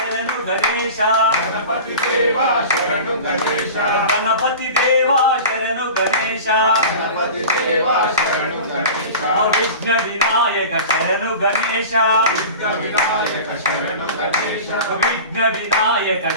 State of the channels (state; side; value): inverted; both; correlation -0.35